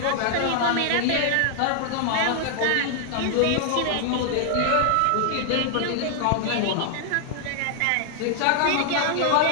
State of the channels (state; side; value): different; both; correlation 0.00